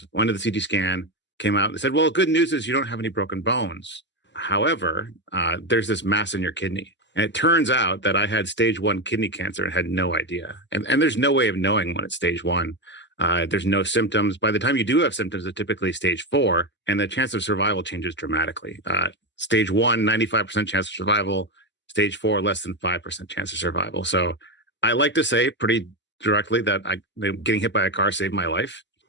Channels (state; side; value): normal; both; correlation 0.13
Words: Went to the CT scan, came out, and they said, well, good news is you don't have any broken bones. However, there's this mass in your kidney. And it turns out that I had stage 1 kidney cancer and had no idea. And there's no way of knowing when it's stage 1. There's no symptoms. By the time you do have symptoms, it's typically stage 4, and the chance of survival changes dramatically. Stage 1, 95% chance of survival. Stage 4, less than 5% chance of survival. So I like to say pretty directly that getting hit by a car saved my life.